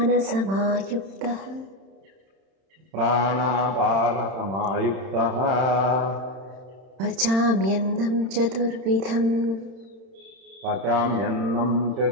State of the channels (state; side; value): late; left; 31 ms